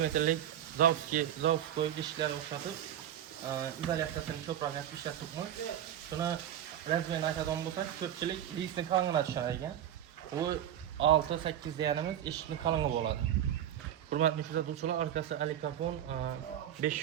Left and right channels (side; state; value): left; quieter; 10.9 dB